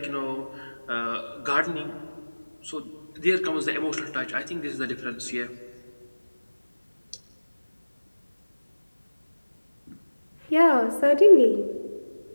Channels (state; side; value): inverted; both; correlation -1.00